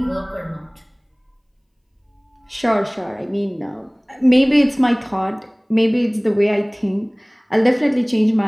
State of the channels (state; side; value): identical; both; correlation 1.00